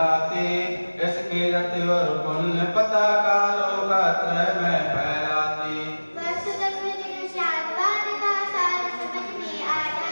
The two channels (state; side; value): inverted; both; correlation -1.00